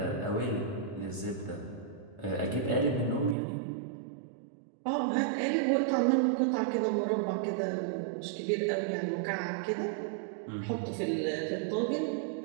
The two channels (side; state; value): left; drops out; at 3.4 s